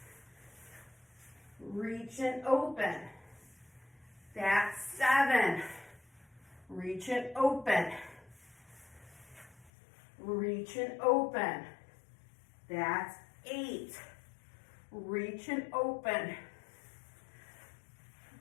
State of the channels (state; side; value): drops out; right; at 9.7 s